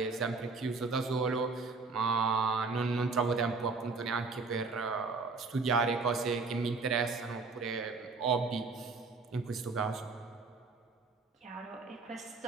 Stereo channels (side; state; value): left; quieter; 4.1 dB